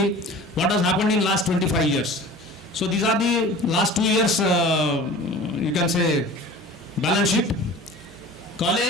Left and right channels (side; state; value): both; normal; correlation 0.41